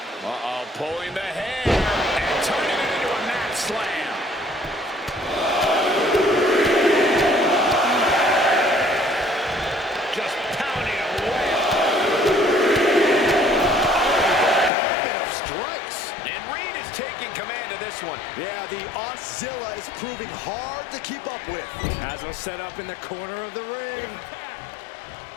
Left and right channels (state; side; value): drops out; right; at 14.7 s